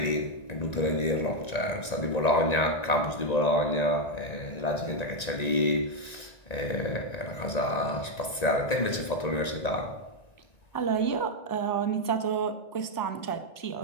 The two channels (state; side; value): late; right; 1.9 ms